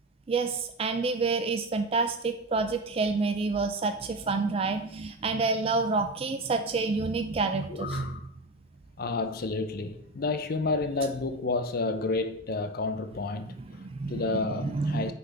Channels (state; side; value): normal; both; correlation 0.20